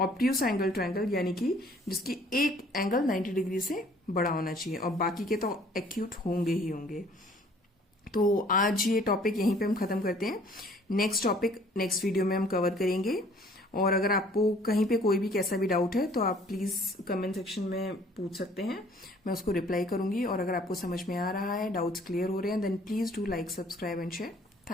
एंगल ट्रायंगल यानी कि जिसकी एक एंगल 90 डिग्री से बड़ा होना चाहिए, और बाकी के तो एक्यूट होंगे ही होंगे। तो आज ये टॉपिक यहीं पे हम खत्म करते हैं। नेक्स्ट टॉपिक नेक्स्ट वीडियो में हम कवर करेंगे। और अगर आपको कहीं पे कोई भी कैसा भी डाउट है तो आप प्लीज कमेंट सेक्शन में पूछ सकते हैं, मैं उसको रिप्लाई करूंगी। और अगर आपको समझ में आ रहा है, डाउट्स क्लियर हो रहे हैं, then please do like, subscribe and share.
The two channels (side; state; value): both; normal; correlation 0.56